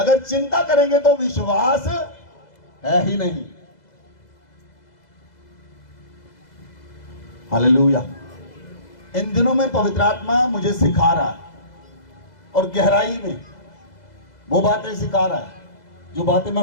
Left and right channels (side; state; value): right; late; 2.0 ms